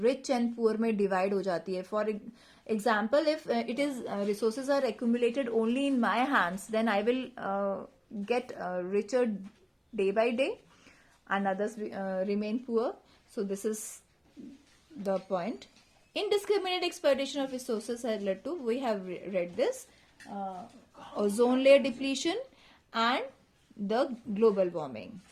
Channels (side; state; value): both; identical; correlation 1.00